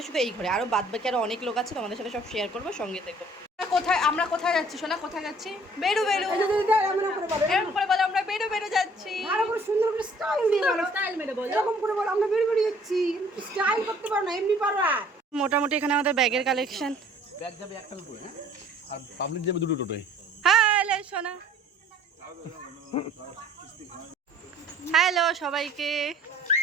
শুধু এই ঘরে, আরও বাদ বাকি আরও অনেক লোক আছে, তোমাদের সাথে সব শেয়ার করবো, সঙ্গে থেকো। আমরা কোথায় যাচ্ছি সোনা? কোথায় যাচ্ছি? বেরু বেরু এরকম করে বলো, আমরা বেরু বেরু যাচ্ছি। আরো করে সুন্দর করে স্টাইল দিয়ে বলো, স্টাইল মেরে বলো, এরকম করে বলো আমরা বেরু বেরু যাচ্ছি। স্টাইল করতে পারো না, এমনি পারো। মোটামুটি এখানে আমাদের ব্যাগের কালেকশন। ব্যাগ যাবে একটা টোটোয়, হ্যাঁ, আর পাবলিক যাবে দুটো টোটোয়। হ্যালো সোনা, হ্যালো সবাইকে।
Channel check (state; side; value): normal; both; correlation 0.55